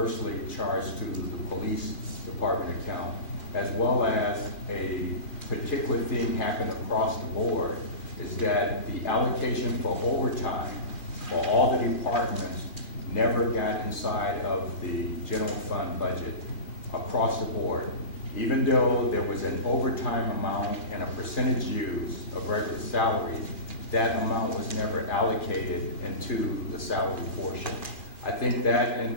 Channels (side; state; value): right; late; 2.4 ms